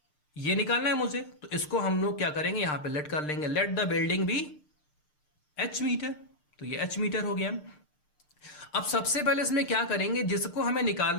ये निकालना है मुझे, तो इसको हम लोग क्या करेंगे, यहां पे लेट कर लेंगे, let the building be h metre, तो ये h मीटर हो गया। अब सबसे पहले इसमें क्या करेंगे, जिसको हमें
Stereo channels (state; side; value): late; right; 6.6 ms